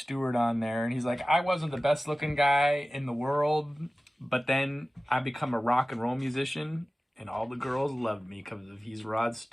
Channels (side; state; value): both; normal; correlation 0.96